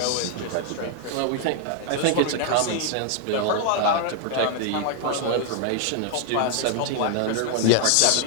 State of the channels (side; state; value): both; different; correlation 0.00